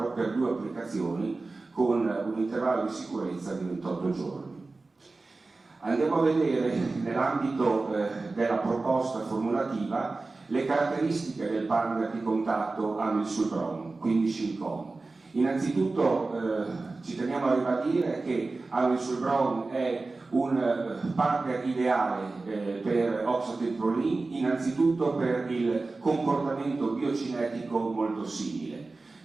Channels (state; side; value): quieter; left; 3.5 dB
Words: per 2 applicazioni con un intervallo di sicurezza di 28 giorni. Andiamo a vedere nell'ambito della proposta formulativa le caratteristiche del partner di contatto amisulbron, quindi Shincon. Innanzitutto ci teniamo a ribadire che amisulbron è un partner ideale per oxatebiprolin, innanzitutto per il comportamento biocinetico molto simile.